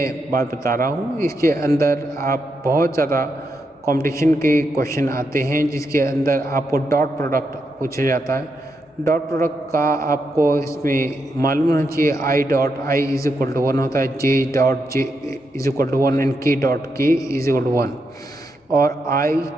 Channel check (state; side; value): normal; both; correlation 0.83